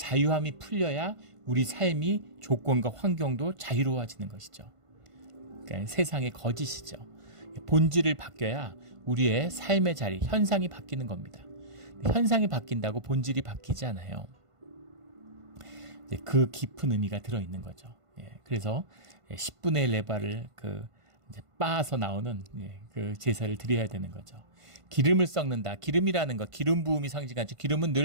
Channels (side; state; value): left; late; 1.5 ms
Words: 풀려야 우리 삶이, 조건과 환경도 자유로워지는 것이죠. 그러니까 세상의 거짓이죠. 본질을 바뀌어야 우리의 삶의 자리, 현상이 바뀌는 겁니다. 현상이 바뀐다고 본질이 바뀌지 않아요. 그 깊은 의미가 들어있는 거죠. 그래서 10분의 1 레바를 이제 빻아서 나오는 그 제사를 드려야 되는 거죠. 기름을 섞는다. 기름이라는 것, 기름 부음이 상징하죠. 기름은